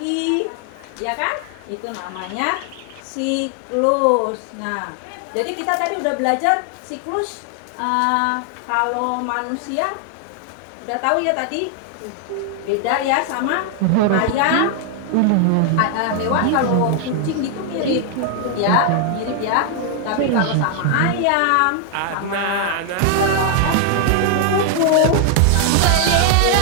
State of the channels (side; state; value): both; different; correlation 0.00